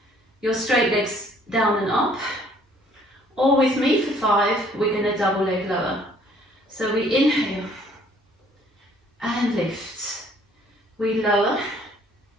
your straight legs down and up. Or with me for 5, we're going to double leg lower. So we inhale and lift. We lower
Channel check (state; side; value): normal; both; correlation 0.60